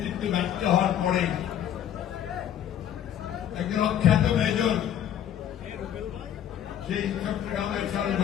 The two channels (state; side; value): quieter; right; 10.2 dB